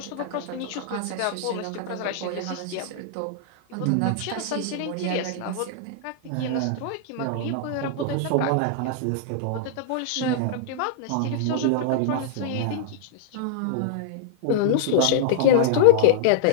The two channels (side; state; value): both; different; correlation -0.01